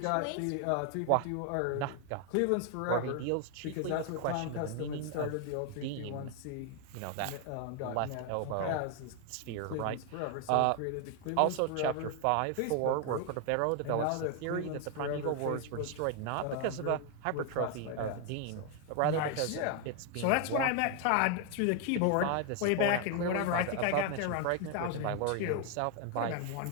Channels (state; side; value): different; both; correlation 0.00